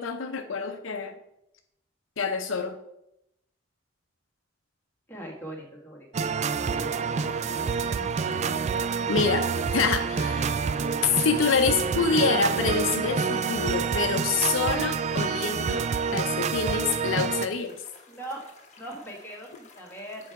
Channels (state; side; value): normal; both; correlation 0.05